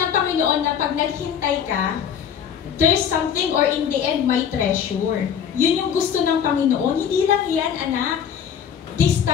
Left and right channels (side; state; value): right; quieter; 8.2 dB